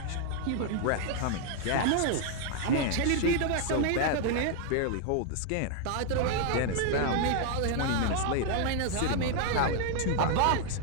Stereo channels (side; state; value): both; different; correlation 0.00